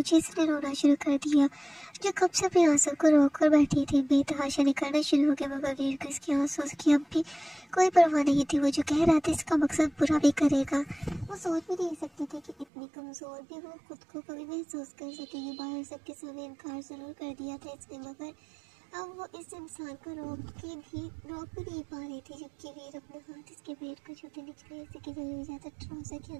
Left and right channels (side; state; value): left; drops out; at 12.7 s